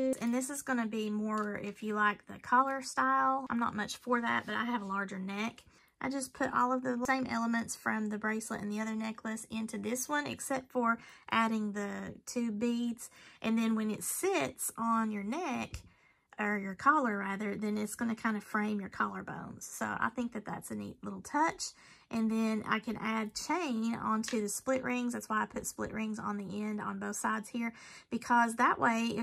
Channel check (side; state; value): both; identical; correlation 1.00